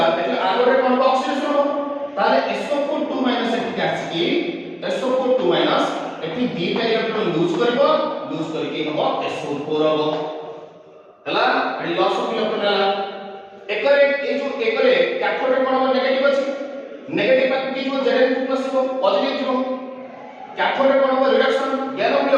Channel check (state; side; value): identical; both; correlation 1.00